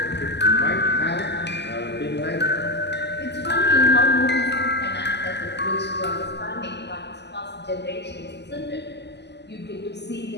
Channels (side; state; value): right; late; 0.50 ms